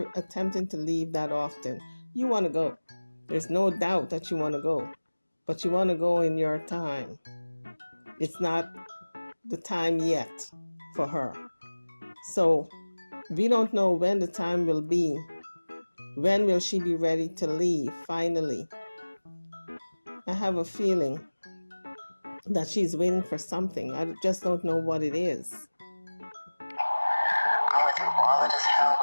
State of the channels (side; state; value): both; inverted; correlation -1.00